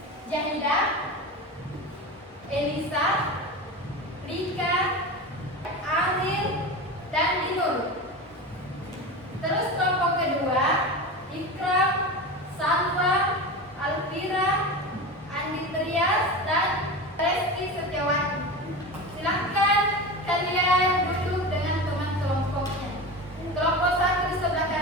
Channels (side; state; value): both; normal; correlation 0.26